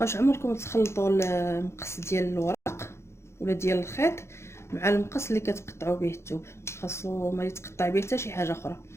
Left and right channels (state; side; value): late; right; 0.13 ms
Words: عمركم تخلطوا المقص ديال الورق ولا ديال الخيط مع المقص اللي كتقطعوا به الثوب، خاصو ما يتقطع به حتى شي حاجه اخرى،